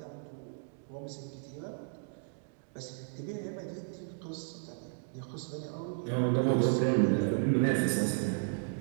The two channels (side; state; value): left; silent; digital silence